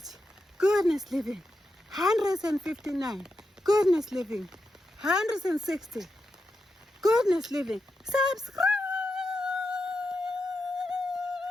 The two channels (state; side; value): normal; both; correlation 0.87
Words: goodness living. 159, goodness living. 160, goodness living. Subscribe.